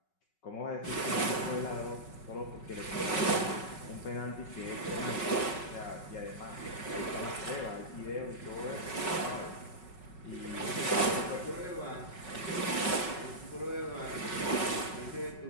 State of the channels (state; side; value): late; right; 5.4 ms